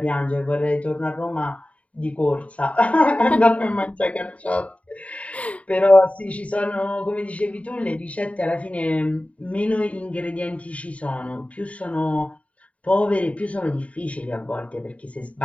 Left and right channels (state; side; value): late; right; 0.066 ms